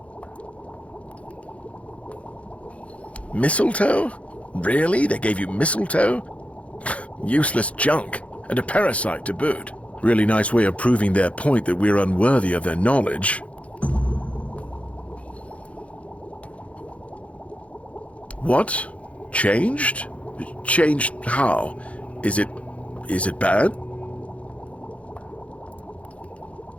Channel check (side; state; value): right; late; 0.064 ms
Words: Mistletoe? Really? They gave you mistletoe? Useless junk, and a parasite to boot. Really nice way of proving their point that we're unworthy of their knowledge. What? Changed? Changed how? Is it bad?